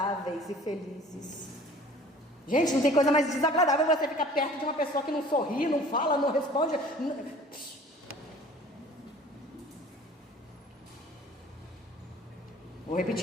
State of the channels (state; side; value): normal; both; correlation 0.48